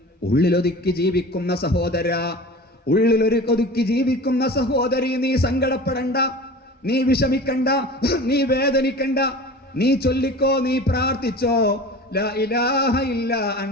ഉള്ളിലൊതുക്കി ജീവിക്കുന്ന സഹോദര, ഉള്ളിലൊതുക്കി ജീവിക്കുന്ന സഹോദരി, നീ സങ്കടപ്പെടണ്ട, നീ വിഷമിക്കണ്ട, നീ വേദനിക്കണ്ട. നീ ചൊല്ലിക്കോ, നീ പ്രാർത്ഥിച്ചോ, ലാ ഇലാഹ ഇല്ലാ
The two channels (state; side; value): normal; both; correlation 0.37